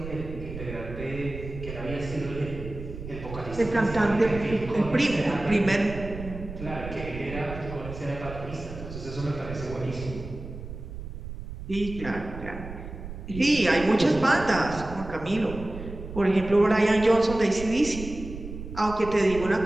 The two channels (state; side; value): noise; right; rumble, 10 dB below the sound